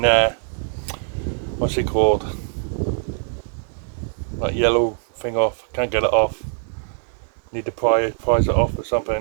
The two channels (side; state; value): left; silent; digital silence